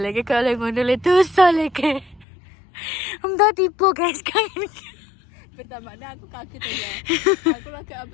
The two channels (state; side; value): drops out; right; at 2.2 s